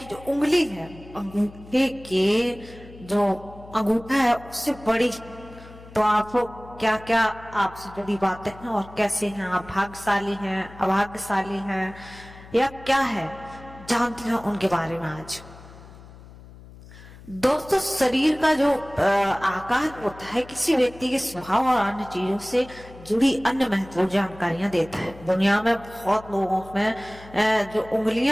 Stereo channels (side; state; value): left; noise; hum, 19 dB below the sound